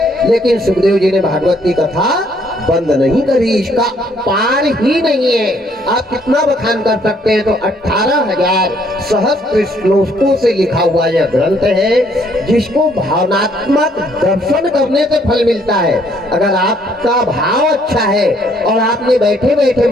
लेकिन सुखदेव जी ने भागवत की कथा बंद नहीं करी। इसका पार ही नहीं है। आप कितना बखान कर सकते हैं। तो 18,000 सहस्त्र श्लोकों से लिखा हुआ यह ग्रंथ है, जिसको भावनात्मक दर्शन करने से फल मिलता है। अगर आपका भाव अच्छा है और आपने बैठे बैठे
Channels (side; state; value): both; normal; correlation 0.66